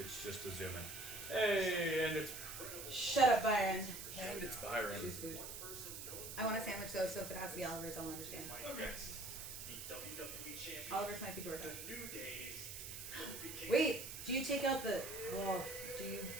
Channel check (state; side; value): noise; right; hiss, 8 dB below the sound